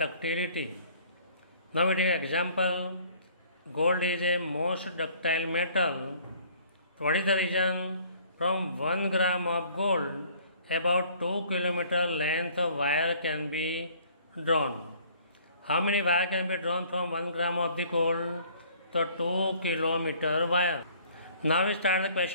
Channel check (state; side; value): inverted; both; correlation -0.56